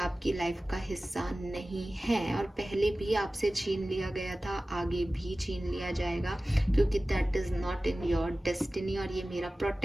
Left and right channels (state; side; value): normal; both; correlation 0.96